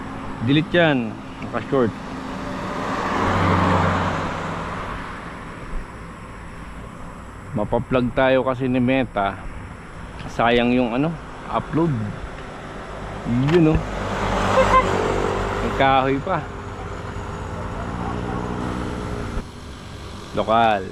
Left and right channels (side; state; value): both; identical; correlation 1.00